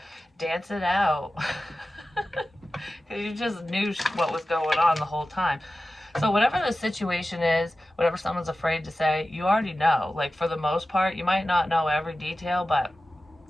Dance it out. Because you just knew what was going on the whole time. So whatever the situation is, whatever someone's afraid to say, you already know. Like, for the most part, you might not know every detail, but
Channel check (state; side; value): normal; both; correlation 0.95